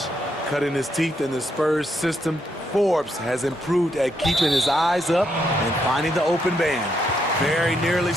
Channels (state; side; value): normal; both; correlation 0.77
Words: Cutting his teeth in the Spurs system, Forbes has improved at keeping his eyes up and finding the open man. Very nearly